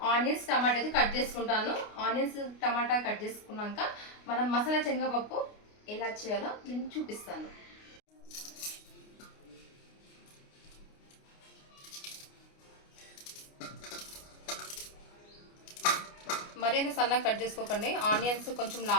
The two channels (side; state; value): right; late; 29 ms